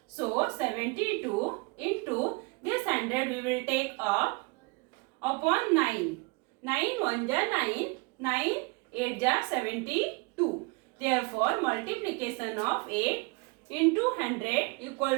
So 72 into this 100 we will take up upon 9. 9 1 ja 9, 9 8 ja 72. Therefore, multiplication of 8 into 100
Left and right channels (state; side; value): quieter; left; 28.8 dB